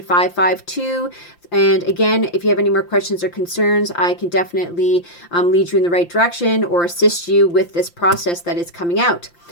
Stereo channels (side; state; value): right; late; 5.8 ms